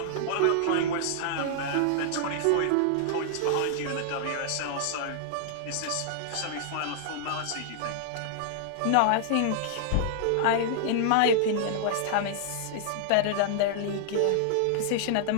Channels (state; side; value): different; both; correlation -0.01